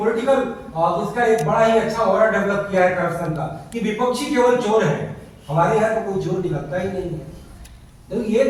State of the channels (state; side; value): identical; both; correlation 1.00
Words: इसका एक बड़ा ही अच्छा ऑरा डेवलप किया है करप्शन का कि विपक्षी केवल चोर है, हमारे यहाँ तो कोई चोर निकलता ही नहीं है। तो ये